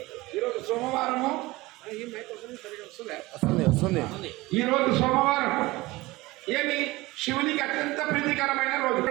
ఈరోజు సోమవారము, ఈరోజు సోమవారం ఏమి శివునికి అత్యంత ప్రీతికరమైన రోజు.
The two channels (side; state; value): left; quieter; 20.4 dB